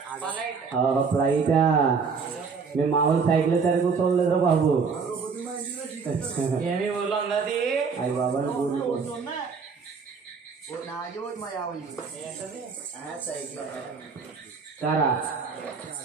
ఫ్లైటా? మేము మామూలు సైకిల్ సరిగ్గా చూడలేదురా బాబు. ఏమి ఊర్లో ఉన్నది? అయ్యి బాబా సారా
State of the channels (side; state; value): left; quieter; 5.4 dB